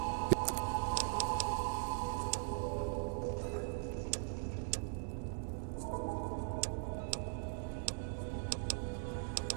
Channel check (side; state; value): left; silent; 51 dB below the other